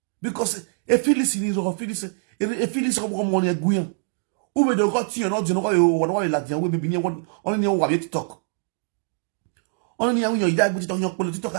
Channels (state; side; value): silent; left; 58 dB below the other